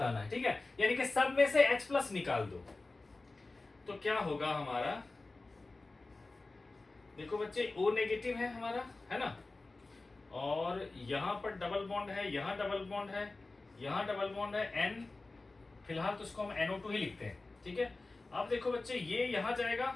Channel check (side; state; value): right; quieter; 3.3 dB